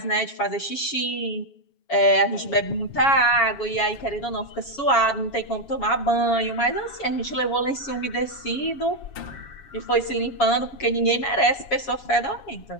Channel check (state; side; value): late; right; 7.2 ms